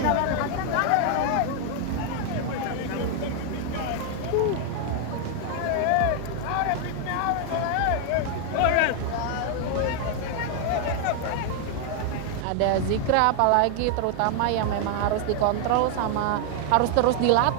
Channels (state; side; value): different; both; correlation 0.00